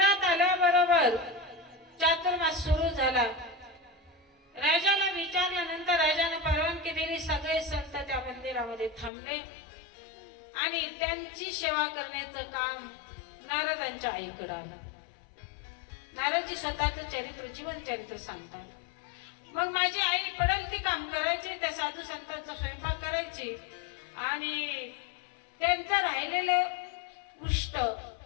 आल्याबरोबर चातुर्मास सुरू झाला. राजाला विचारल्यानंतर राजाने परवानगी दिली. सगळे संत त्या मंदिरामध्ये थांबले आणि त्यांची सेवा करण्याचं काम नारदांच्या आईकडे आलं. नारदजी स्वतःचं चरित्र, जीवन चरित्र सांगतात. मग माझी आई पडेल ती काम करायची, त्या साधू संतांचा स्वयंपाक करायची आणि त्यांचं राहिलेलं उष्ट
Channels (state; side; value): drops out; right; at 9.1 s